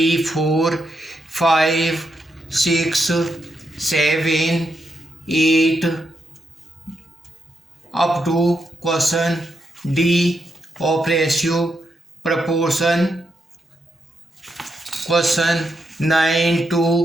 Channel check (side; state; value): both; normal; correlation 0.82